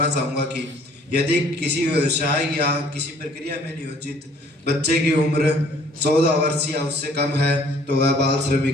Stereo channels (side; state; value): both; normal; correlation 0.58